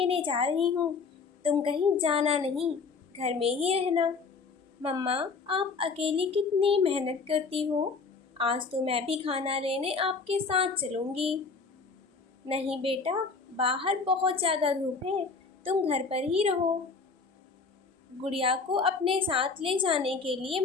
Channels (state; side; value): quieter; right; 4.7 dB